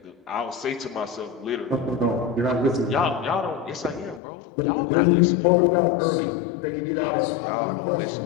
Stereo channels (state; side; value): drops out; right; at 4.2 s